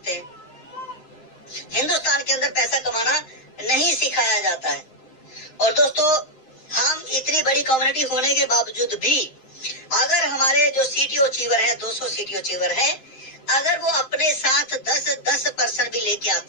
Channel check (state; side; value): late; right; 7.7 ms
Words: हिंदुस्तान के अंदर पैसा कमाना नहीं सिखाया जाता है। और दोस्तों हम इतनी बड़ी कम्युनिटी होने के बावजूद भी अगर हमारे जो CTO अचीवर है, 200 CTO अचीवर है, अगर वो अपने साथ 10% भी लेके